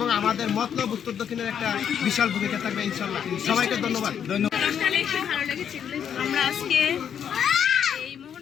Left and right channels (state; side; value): quieter; right; 8.4 dB